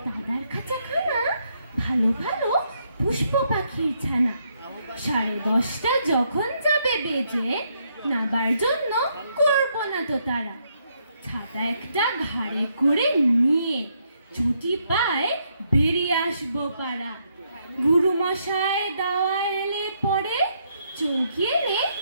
দাদার খাঁচাখানা ভালো ভালো পুষ্প পাখির ছানা। 10:30 যখন যাবে বেজে, নাবার জন্য করবো না তো তারা। ছাতা একটা ঘাড়ে করে নিয়ে ছুটি পায় বেরিয়ে আসবো পাড়া। গুরুমশাই দাওয়া এলে পরে চৌকি এনে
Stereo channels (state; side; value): inverted; both; correlation -0.75